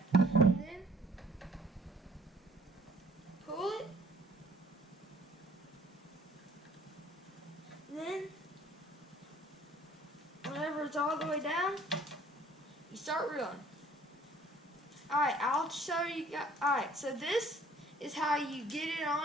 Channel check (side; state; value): both; normal; correlation 0.56